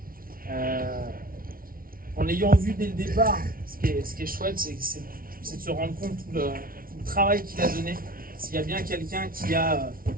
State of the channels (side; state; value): left; late; 0.42 ms